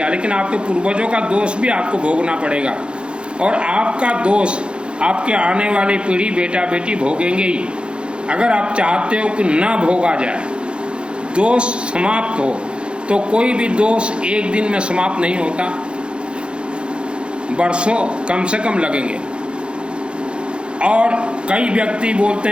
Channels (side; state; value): left; late; 0.055 ms